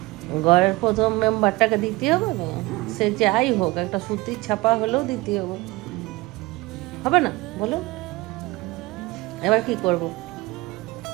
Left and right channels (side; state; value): left; quieter; 21.2 dB